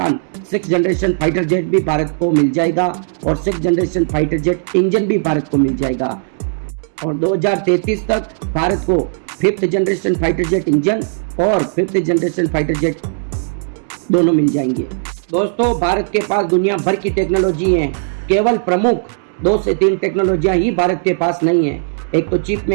6th जनरेशन फाइटर जेट भी भारत को मिल जाएगा और 6th generation fighter jet engine भी भारत को मिल जाएगा। और 2033 तक भारत को 5th generation fighter jet engine और 5th जनरेशन फाइटर जेट दोनों मिल जाएंगे। दोस्तों भारत के पास दुनिया भर की टेक्नोलॉजी है, केवल प्रमुख 2 से 3 टेक्नोलॉजियां ही भारत के पास नहीं है। एक तो चिप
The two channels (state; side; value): silent; left; 68 dB below the other